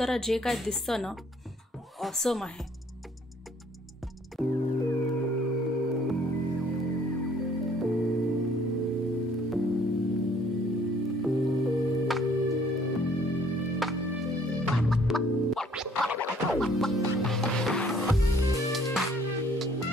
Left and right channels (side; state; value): both; normal; correlation 0.60